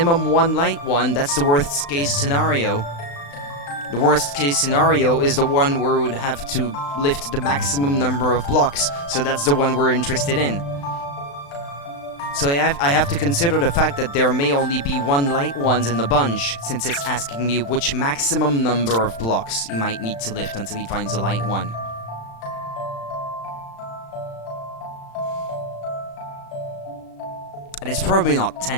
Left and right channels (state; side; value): late; right; 35 ms